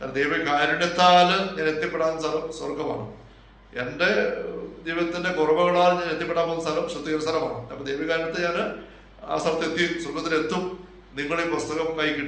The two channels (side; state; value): both; identical; correlation 1.00